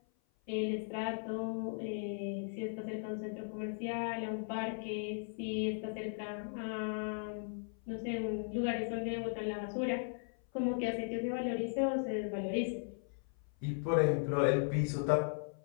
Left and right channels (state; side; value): silent; right; 53 dB below the other